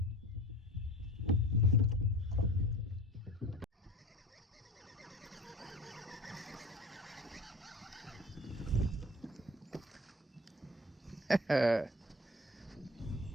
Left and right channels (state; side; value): normal; both; correlation 0.39